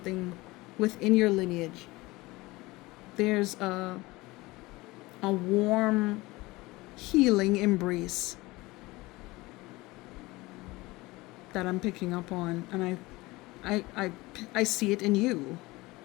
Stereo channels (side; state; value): right; quieter; 21.1 dB